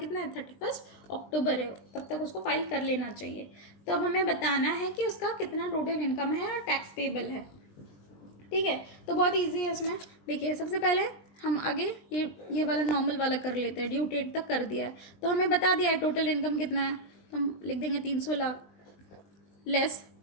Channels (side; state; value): right; late; 20 ms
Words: है? 31 October है, तब तक उसको फाइल कर लेना चाहिए। तो अब हमें बताना है कि उसका कितना टोटल इनकम है और टैक्स पेबल है। ठीक है, तो बहुत इजी है इसमें। देखिए, सबसे पहले हम आगे ये वाला नॉर्मल वाला कर लेते हैं। ड्यू डेट तक कर दिया है तो हमें बता दिया है टोटल इनकम कितना है, तो हम लिख देंगे 300 लाख लेस